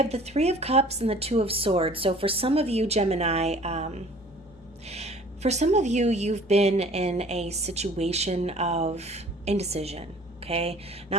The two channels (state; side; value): normal; both; correlation 0.50